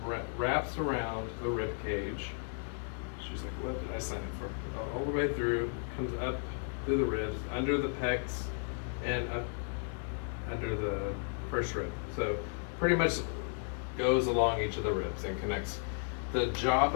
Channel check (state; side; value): silent; right; 55 dB below the other